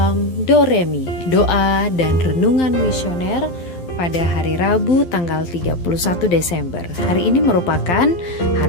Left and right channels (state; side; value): late; right; 12 ms